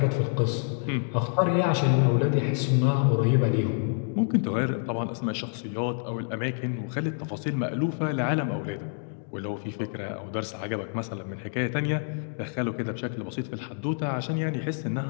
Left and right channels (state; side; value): silent; right; digital silence